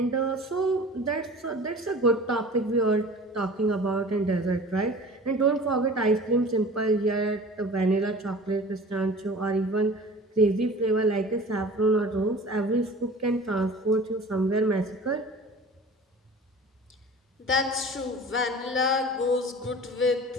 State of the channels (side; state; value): both; normal; correlation 0.41